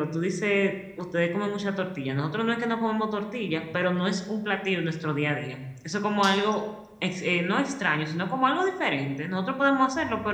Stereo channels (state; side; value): identical; both; correlation 1.00